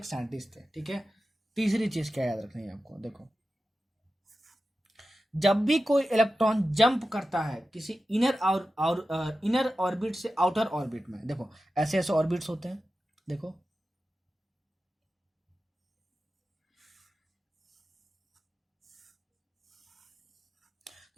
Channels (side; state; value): both; normal; correlation 0.92